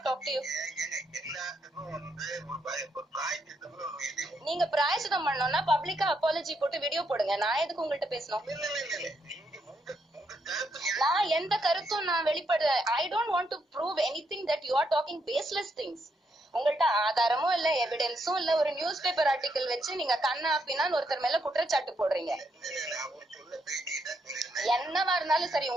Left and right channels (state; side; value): normal; both; correlation 0.77